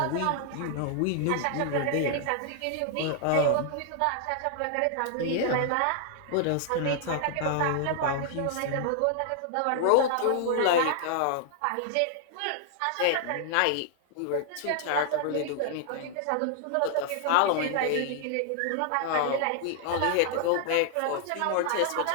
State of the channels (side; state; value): both; different; correlation -0.01